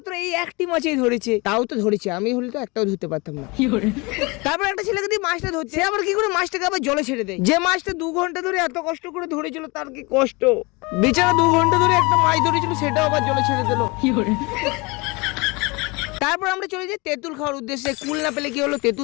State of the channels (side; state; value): right; quieter; 26.4 dB